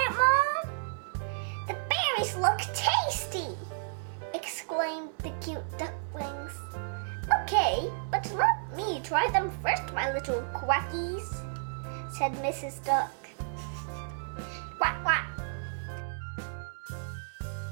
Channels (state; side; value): silent; left; 57 dB below the other